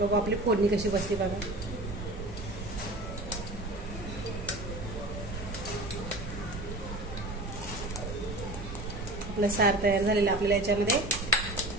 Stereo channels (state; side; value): noise; right; rumble, 8 dB below the sound